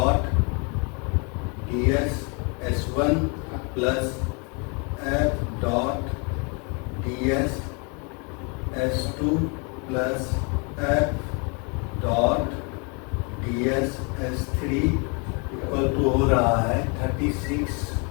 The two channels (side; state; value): right; quieter; 34.0 dB